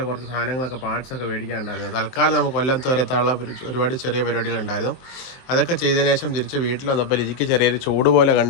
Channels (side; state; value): right; late; 23 ms